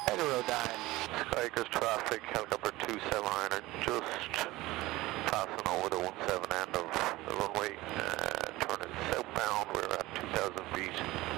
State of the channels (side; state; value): left; quieter; 19.0 dB